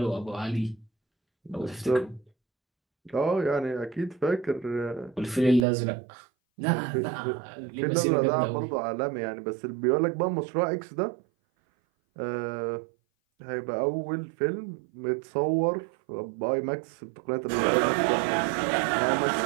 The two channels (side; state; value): left; drops out; at 5.7 s